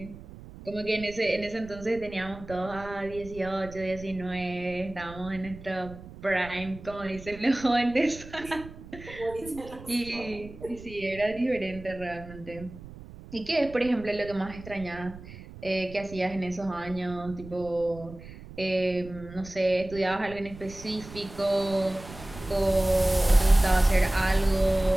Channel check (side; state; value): right; noise; rumble, 16 dB below the sound